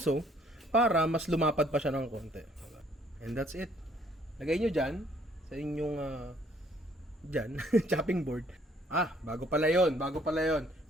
para mas lumapad pa siya ng konti. And that's it. Lagay nyo dyan, sa inyong chopping board. Bago pala yon.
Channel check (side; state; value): both; normal; correlation 0.63